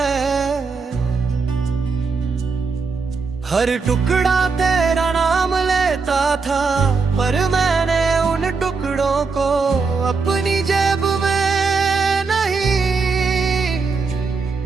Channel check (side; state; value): left; quieter; 4.7 dB